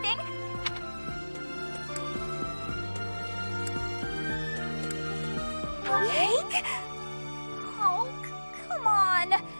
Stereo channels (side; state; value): both; inverted; correlation -1.00